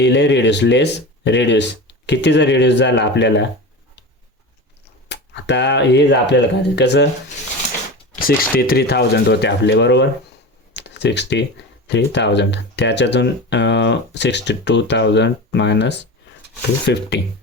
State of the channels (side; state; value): both; normal; correlation 0.29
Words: रिड्यूस, लेस रिड्यूस. कितीचा रिड्यूस झाला आपल्याला, आता हे आपल्याला काय कसं 63,000 होते आपले, बरोबर. 63,000 त्याच्यातून 62,000 मायनस 250